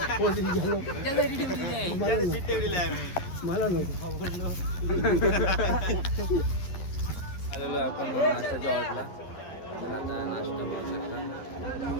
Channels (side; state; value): right; late; 11 ms